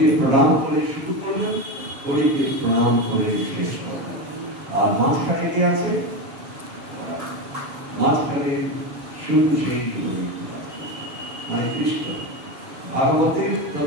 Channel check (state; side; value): late; left; 6.9 ms